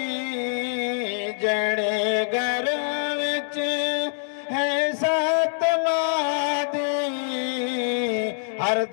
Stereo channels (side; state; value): right; silent; 62 dB below the other